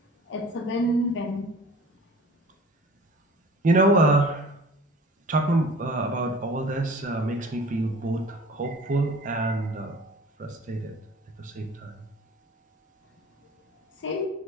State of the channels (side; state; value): both; normal; correlation 0.45